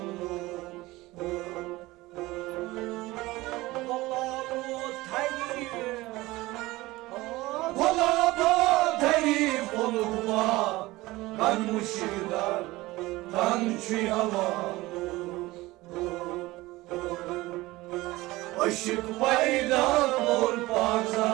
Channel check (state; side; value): quieter; left; 19.5 dB